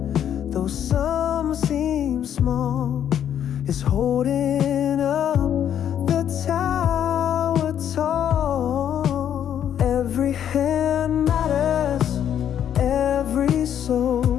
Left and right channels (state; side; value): quieter; right; 9.7 dB